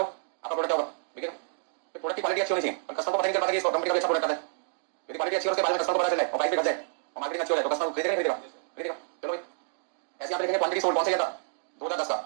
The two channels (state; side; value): silent; left; digital silence